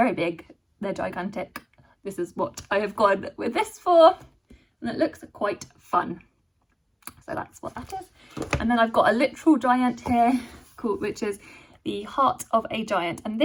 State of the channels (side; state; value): both; identical; correlation 1.00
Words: big, they're gigantic. This is what I have gone with this for, and it looks quite fun. So that's what that is. And then I've got a literal giant here, which is the Heart of a Giant, and